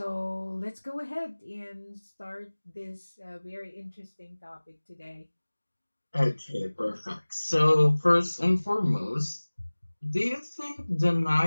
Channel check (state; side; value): inverted; both; correlation -1.00